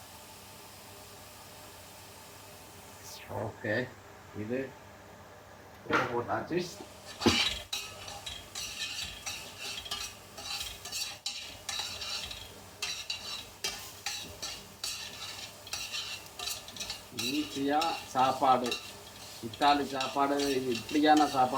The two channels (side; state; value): both; identical; correlation 1.00